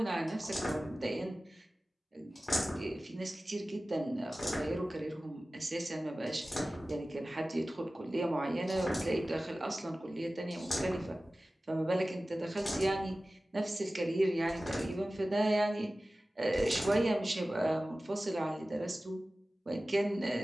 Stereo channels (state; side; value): normal; both; correlation 0.96